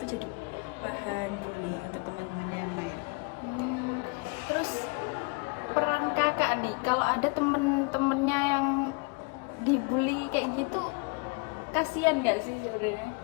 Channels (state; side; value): quieter; right; 30.4 dB